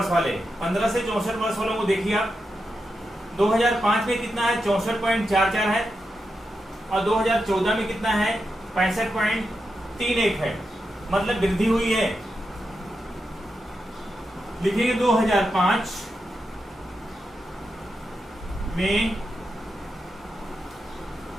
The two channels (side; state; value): both; normal; correlation 0.87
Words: वाले। 15 से 64 वर्ष वालों को देखिए आप, 2005 में कितना है? 64.44 है, और 2014 में कितना है? 65.31 है, मतलब वृद्धि हुई है। लिखेंगे 2005 में